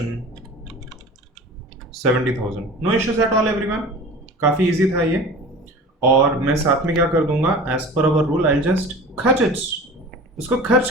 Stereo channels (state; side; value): normal; both; correlation 0.38